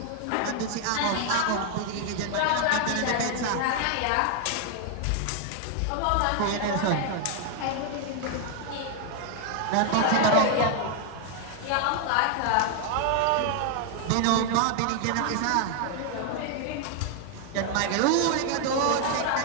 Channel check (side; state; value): both; different; correlation 0.00